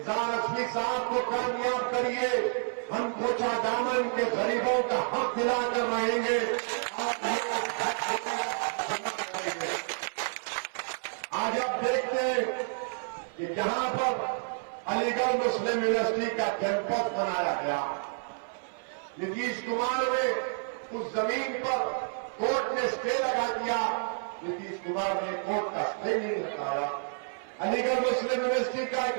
असमी साहब को कामयाब करिए, हम कोचा दामन के गरीबों का हक दिलाकर रहेंगे। आज आप देखते हैं कि जहां पर अलीगढ़ मुस्लिम यूनिवर्सिटी का कैंपस बनाया गया, नीतीश कुमार ने उस जमीन पर कोर्ट ने स्टे लगा दिया। नीतीश कुमार ने कोर्ट का स्टे नहीं लगाया। अलीगढ़ मुस्लिम यूनिवर्सिटी का एक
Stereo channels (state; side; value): silent; left; 57 dB below the other